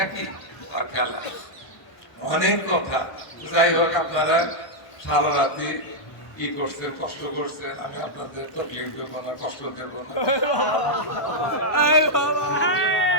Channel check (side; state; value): right; late; 1.1 ms